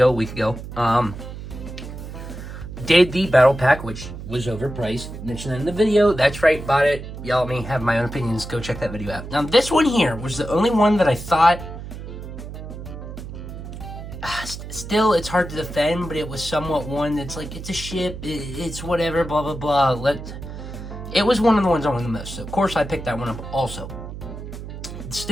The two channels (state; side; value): noise; right; hum, 10 dB below the sound